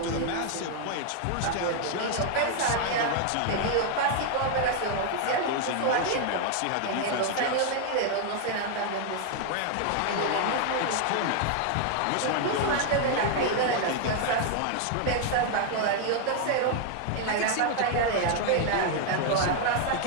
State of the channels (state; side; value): different; both; correlation 0.00